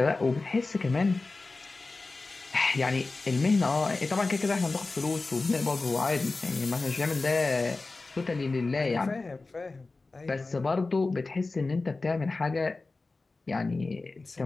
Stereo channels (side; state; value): right; quieter; 3.6 dB